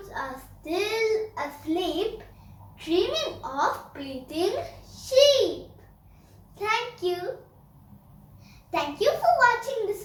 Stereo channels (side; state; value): both; identical; correlation 1.00